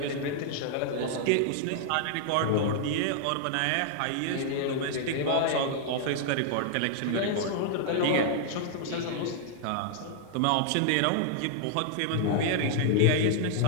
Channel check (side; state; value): both; different; correlation -0.01